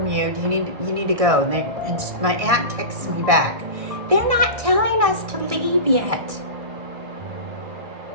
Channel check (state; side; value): late; left; 1.6 ms